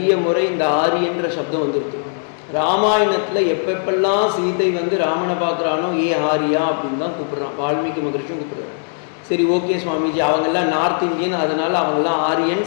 முறை இந்த ஆரியன்ற சப்தம் வந்துருக்கு. ராமாயணத்தில் எப்பெப்பெல்லாம் சீதை வந்து ராமனை பார்க்குறானோ ஏ ஆரியா அப்படின்னு தான் கூப்பிட்றான். வால்மீகி மகரிஷியும் கூப்பிட்றாரு. சரி, ஓகே சுவாமிஜி, அவங்கெல்லாம் நார்த் இந்தியன், அதனால் அவங்கெல்லாம்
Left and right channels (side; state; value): right; silent; digital silence